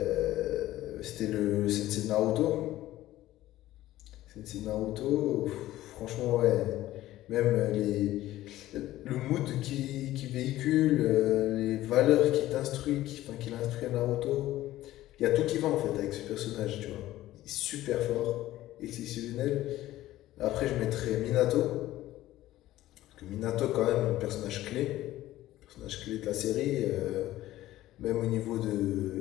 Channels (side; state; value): right; quieter; 15.1 dB